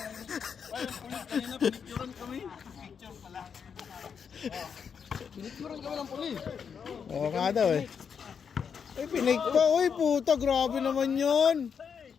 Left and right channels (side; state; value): right; quieter; 6.8 dB